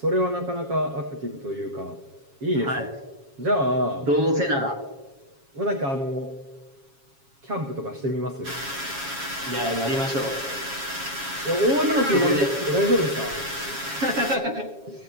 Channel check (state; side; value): late; left; 7.3 ms